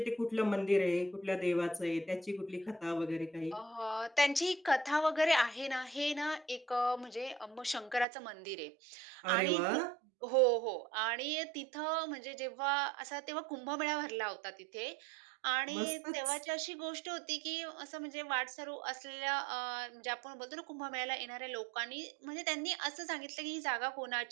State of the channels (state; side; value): drops out; left; at 8.1 s